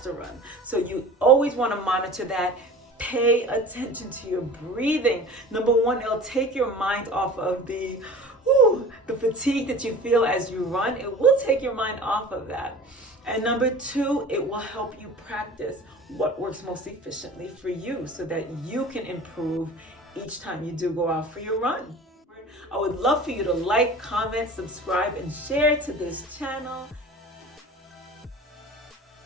run. So you always want to monitor that. Pay attention to your breathing. Number one, it'll take your mind off of the fatigue that you feel as you run. It will take your mind off of that. And number two, it will help you practice what works most efficiently for you so that you can improve each time you do go out for your run. I would love for you to like, comment, subscribe, and share to this channel.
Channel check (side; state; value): both; normal; correlation 0.39